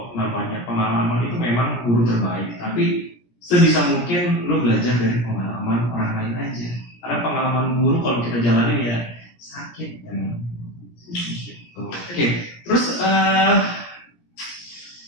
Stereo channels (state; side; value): late; right; 17 ms